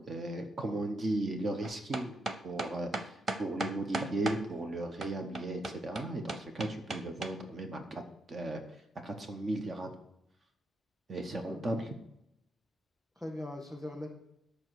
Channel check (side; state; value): both; normal; correlation 0.80